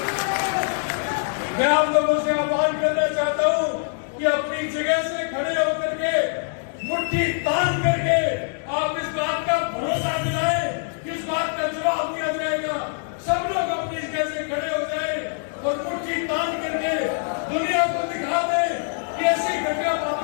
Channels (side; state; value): right; silent; digital silence